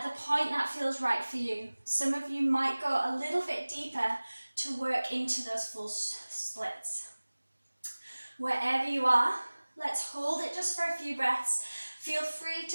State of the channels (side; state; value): both; inverted; correlation -1.00